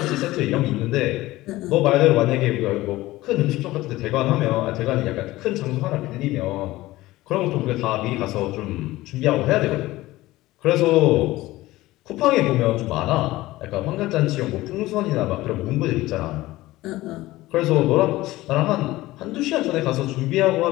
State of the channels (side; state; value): right; quieter; 17.8 dB